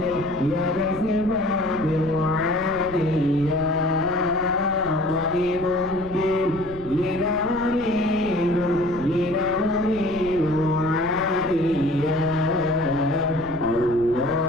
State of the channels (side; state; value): left; noise; rumble, 16 dB below the sound